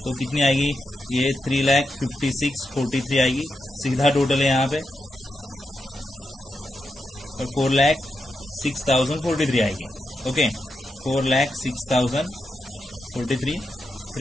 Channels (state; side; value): normal; both; correlation 0.86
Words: तो कितनी आएगी, ये 3,56,43 आएगी, सीधा टोटल है यहाँ पे, और 4,06,043 आएगी, ओके। 4,06,043,